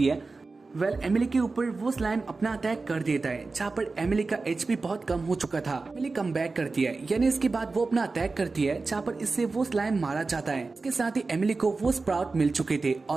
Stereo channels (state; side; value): quieter; left; 3.8 dB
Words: है। एमिली के ऊपर वो स्लाइम अपना अटैक कर देता है। जहाँ पर एमिली का एचपी बहुत कम हो चुका था। एमिली कम बैक करती है यानी इसके बाद वो अपना अटैक करती है जहाँ पर इससे वो स्लाइम मारा जाता है। इसके साथ ही एमिली को वो स्प्राउट मिल चुके थे